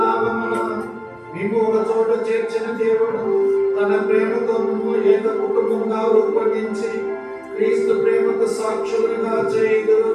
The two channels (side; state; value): both; identical; correlation 1.00